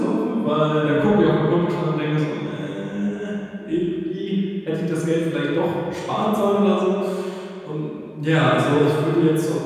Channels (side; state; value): both; identical; correlation 1.00